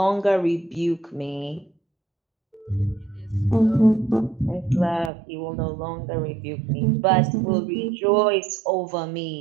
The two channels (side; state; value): left; drops out; at 5.1 s